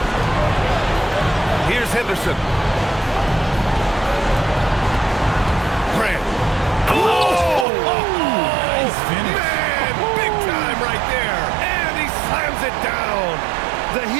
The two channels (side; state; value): left; drops out; at 7.7 s